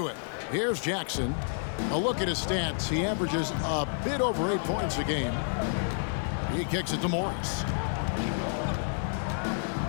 it. Here's Jackson. A look at his stats. He averages a bit over 8 points a game. He kicks it to Morris.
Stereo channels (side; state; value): right; silent; digital silence